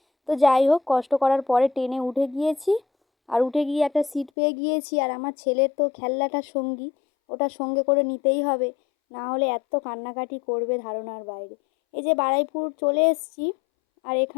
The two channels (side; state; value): right; drops out; at 4.3 s